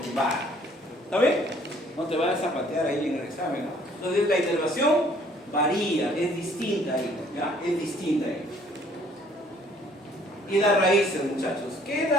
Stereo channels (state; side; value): normal; both; correlation 0.59